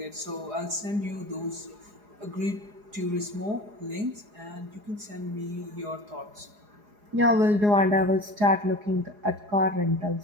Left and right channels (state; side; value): late; left; 4.8 ms